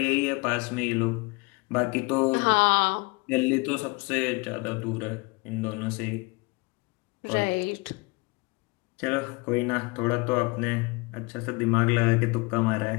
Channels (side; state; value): right; quieter; 26.9 dB